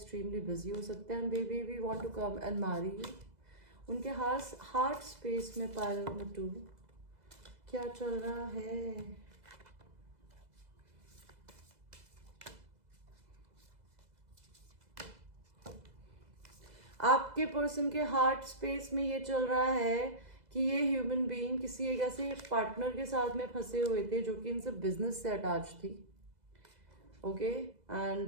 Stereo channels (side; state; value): left; late; 2.0 ms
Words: बिजी हो सकते हैं, and they we want to come and marry you. उनके हार्ट स्पेस में पाइल नंबर 2 क्या चल रहा है. आपके पर्सन के हार्ट स्पेस में ये चल रहा है कि ये ह्यूमन बीइंग किसी एक ऐसे पार्टनर के साथ में फंसे हुए थे जो कि इनसे बिजनेस से अटैच थी. ओके,